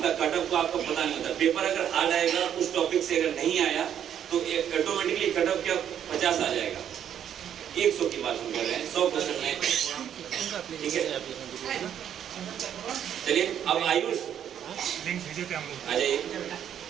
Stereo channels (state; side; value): quieter; left; 9.5 dB